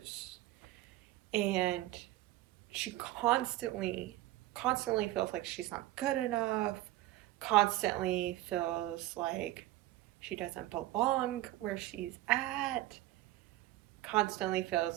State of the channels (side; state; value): left; quieter; 16.4 dB